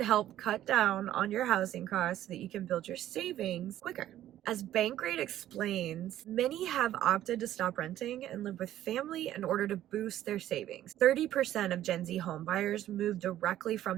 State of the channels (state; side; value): quieter; left; 12.7 dB